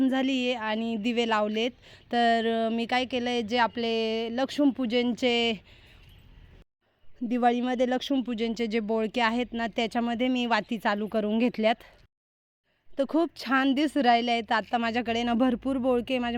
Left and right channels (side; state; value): both; identical; correlation 1.00